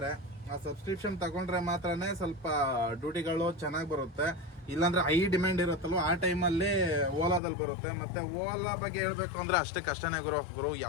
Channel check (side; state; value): right; drops out; at 7.4 s